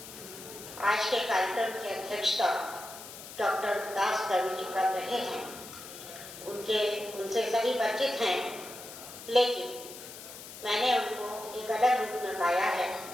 आज के कार्यक्रम की अध्यक्षता डॉक्टर विकास दवे जी कर रहे हैं। उनसे सभी परिचित हैं, लेकिन मैंने उनको एक अलग रूप में पाया है,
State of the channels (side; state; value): left; noise; hiss, 13 dB below the sound